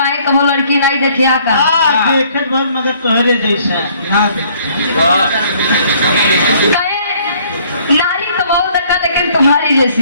कब लड़की नहीं देखिया का देखत बहुत मगर तोहरे जैसा ना काहे नारी तो बहुत देखा लेकिन तुम्हारी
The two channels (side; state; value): both; inverted; correlation -0.61